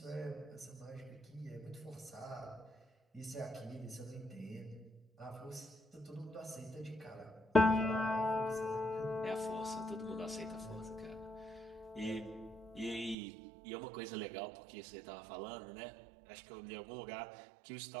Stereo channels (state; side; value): drops out; left; at 13.2 s